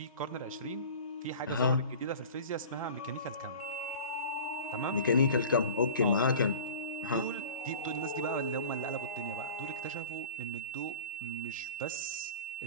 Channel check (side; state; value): both; inverted; correlation -0.39